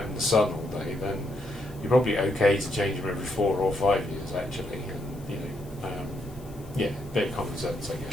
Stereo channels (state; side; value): noise; left; hiss, 24 dB below the sound